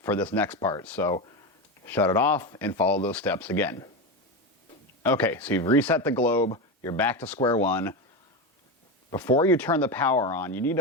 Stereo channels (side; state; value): both; normal; correlation 0.17